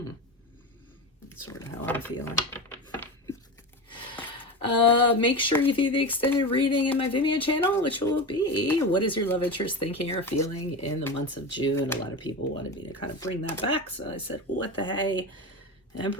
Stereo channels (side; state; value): both; normal; correlation 0.23